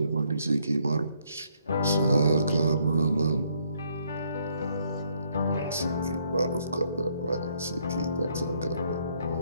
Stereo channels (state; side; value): inverted; both; correlation -0.70